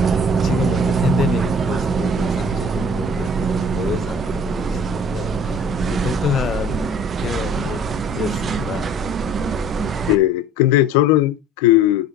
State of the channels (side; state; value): both; normal; correlation 0.47